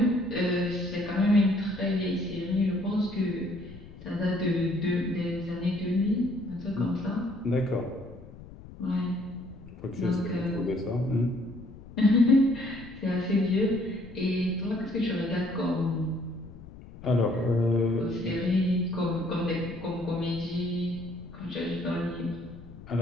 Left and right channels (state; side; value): noise; left; rumble, 17 dB below the sound